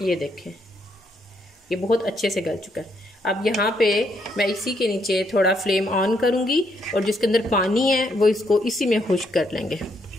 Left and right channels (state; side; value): normal; both; correlation 0.74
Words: ये देखें, ये बहुत अच्छे से गल चुका है। अब यहाँ पे मैं इसी के नीचे थोड़ा फ्लेम ऑन करूँगी और जिसके अंदर पानी है वो इसको इसी में खुश्क कर लेंगे।